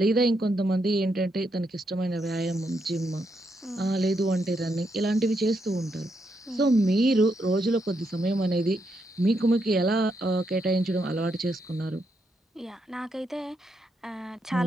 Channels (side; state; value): both; normal; correlation 0.79